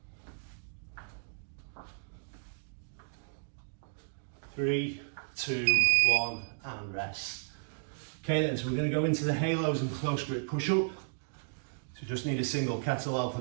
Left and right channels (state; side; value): silent; left; digital silence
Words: 3, 2, 1, and rest. Okay then, so we're going to go into the halos and close grip push-up. So just need a single kettlebell